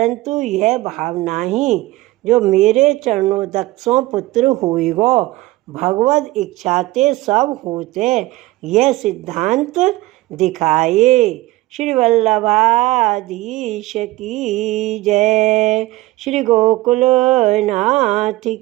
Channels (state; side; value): quieter; left; 18.5 dB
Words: यह भाव नहीं, जो मेरे चरणोदक सो पुत्र होइगो। भगवद इच्छाते सब होते, यह सिद्धांत दिखाए। श्री वल्लभाधीश की जय। श्री गोकुलनाथ